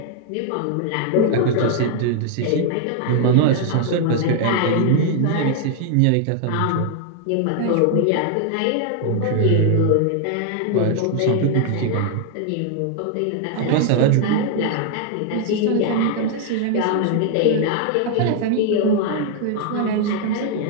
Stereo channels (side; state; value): both; different; correlation 0.00